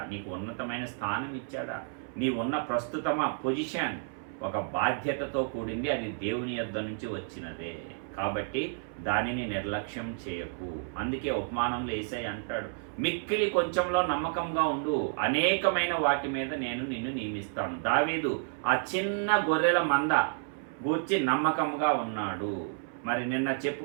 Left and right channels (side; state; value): left; silent; 57 dB below the other